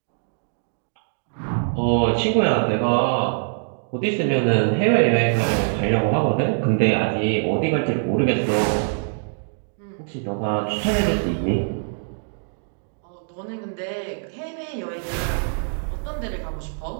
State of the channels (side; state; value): left; silent; digital silence